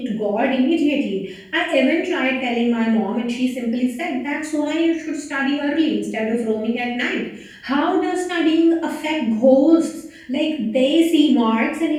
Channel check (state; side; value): identical; both; correlation 1.00